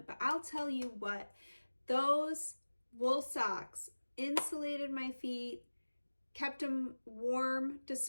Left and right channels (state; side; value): inverted; both; correlation -1.00